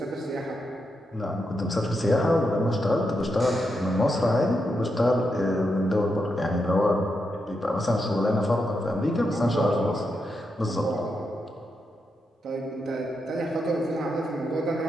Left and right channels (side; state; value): both; normal; correlation 0.84